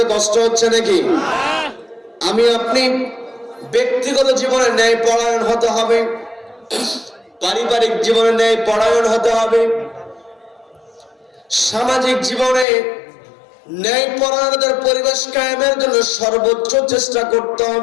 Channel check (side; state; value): right; drops out; at 12.7 s